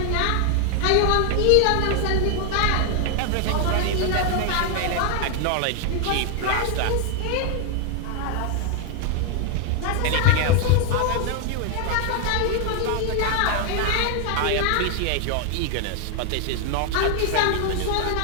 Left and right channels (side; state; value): both; different; correlation 0.01